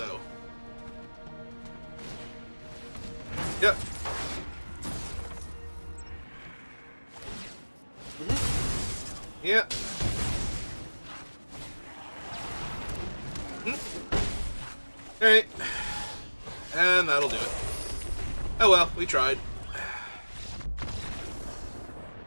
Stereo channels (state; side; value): inverted; both; correlation -1.00